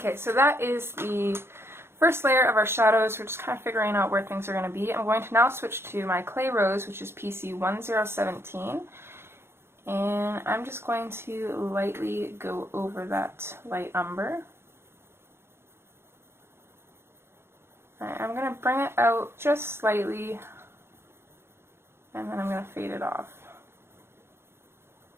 so that is the first layer of our shadows. We're just kind of figuring out where things are going to be. I'm going to now switch to my clay rose, which is PC 1017. And I'm just going to lightly go over that light umber. I'm going to bring it out just slightly, and then I'm going to fade it off.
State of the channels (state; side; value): late; left; 0.12 ms